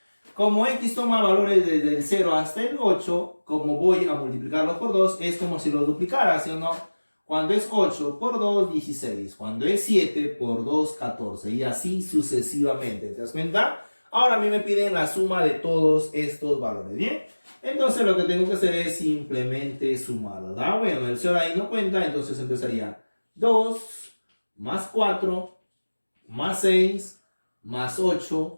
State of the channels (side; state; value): both; inverted; correlation -1.00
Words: Como X toma valores desde el 0 hasta el 8, como voy a multiplicarlos por 2, es como si los duplicara, ¿sí o no? Cuando es 8 por 2, 16. Cuando es 7 por 2, 14. Y así sucesivamente, ¿te das cuenta? Ahora a mí me piden la suma de todos estos valores, ¿bien? Entonces lo que tengo que hacer es simplemente sumarlos, ¿verdad? Bueno, el 0 ahí no cuenta, entonces empezaría 2 más 4 más 6 más